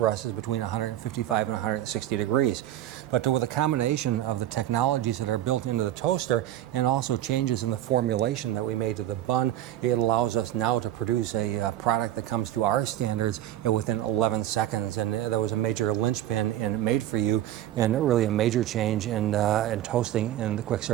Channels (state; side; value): quieter; left; 13.0 dB